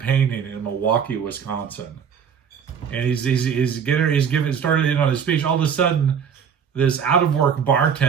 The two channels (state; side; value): quieter; left; 7.3 dB